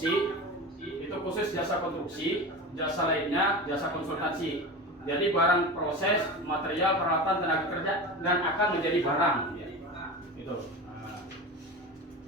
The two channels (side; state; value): both; normal; correlation 0.28